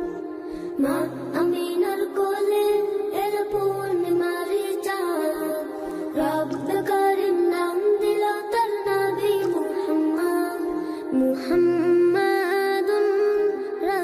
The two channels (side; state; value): both; identical; correlation 1.00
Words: মা আমিনার কোলে এলো পূর্ণিমার চাঁদ, রব্বে করিম নাম দিল তার নবী মুহাম্মদ। মুহাম্মাদুন